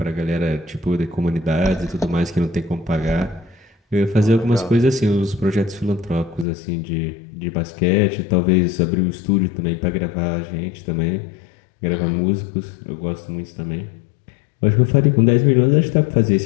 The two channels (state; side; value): drops out; right; at 6.5 s